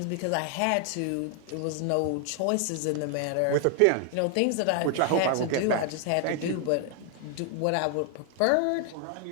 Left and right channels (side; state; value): both; different; correlation 0.00